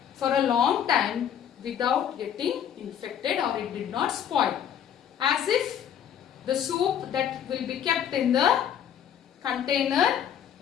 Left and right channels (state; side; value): quieter; right; 9.3 dB